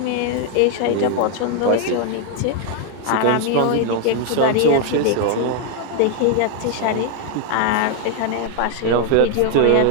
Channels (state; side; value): different; both; correlation 0.00